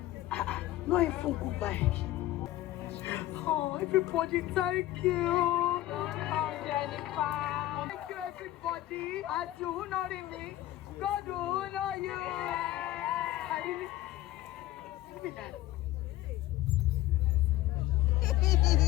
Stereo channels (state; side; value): quieter; right; 15.2 dB